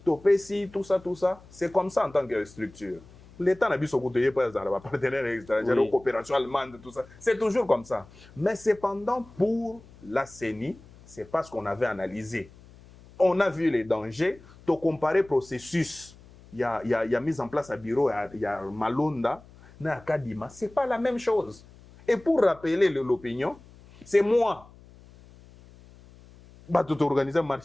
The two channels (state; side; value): noise; left; hum, 23 dB below the sound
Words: to pesi, tout ça, c'est comme ça en tant que structure. L'État n'a biso kouteye pas za ba partenaires étrangers, coopération allemande, tout ça. C'est toujours comme ça. Mais cependant pour la CENI, c'est parce qu'on avait analysé. On a vu les dangers, to comparer processus. Il y a mis en place à bureau, il y a Malonda, na Kadima, c'est pas la même chose. Et pour rappeler l'opinion, c'est moi. Bah, tout organiser